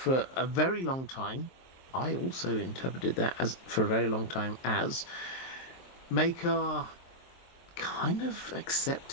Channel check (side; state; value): right; late; 23 ms